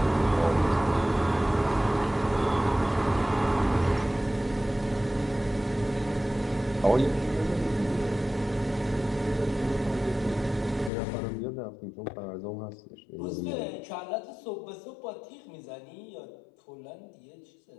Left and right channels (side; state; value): right; drops out; at 10.9 s